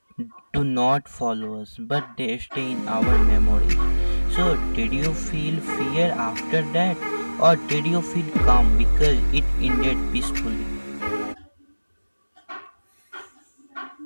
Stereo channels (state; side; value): inverted; both; correlation -1.00